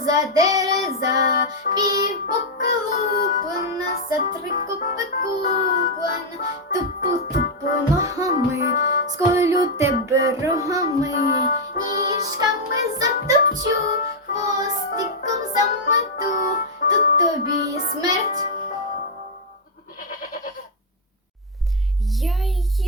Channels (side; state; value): both; normal; correlation -0.01